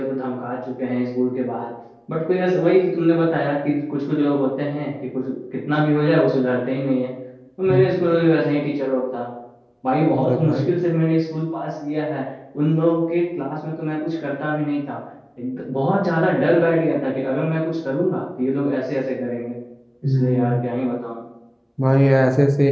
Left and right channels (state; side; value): identical; both; correlation 1.00